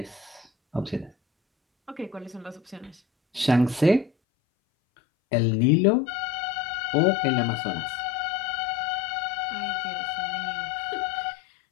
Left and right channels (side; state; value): right; drops out; at 4.1 s